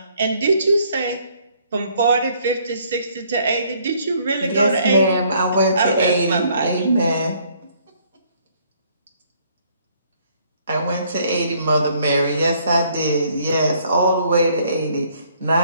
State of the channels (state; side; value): inverted; both; correlation -0.64